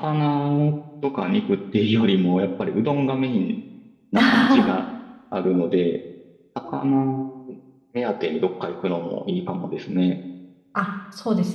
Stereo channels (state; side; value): identical; both; correlation 1.00